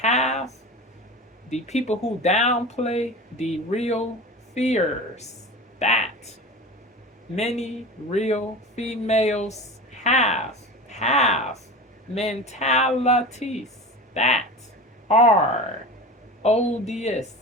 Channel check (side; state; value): both; normal; correlation 0.32